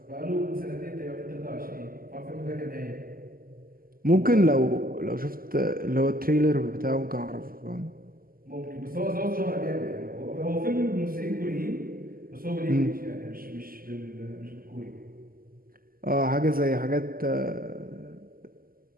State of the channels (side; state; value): left; late; 0.42 ms